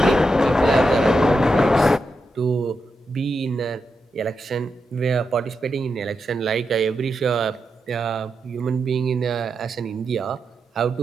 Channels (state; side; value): normal; both; correlation 0.86